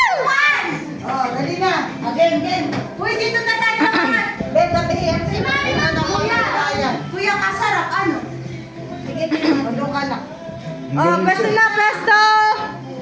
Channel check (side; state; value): both; identical; correlation 1.00